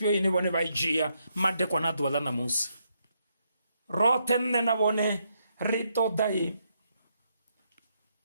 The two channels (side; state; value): both; inverted; correlation -0.77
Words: ine vhone vha I dzhia madekwana a ḓuvha ḽa ṋamusi. Roṱhe nṋe na vhone ri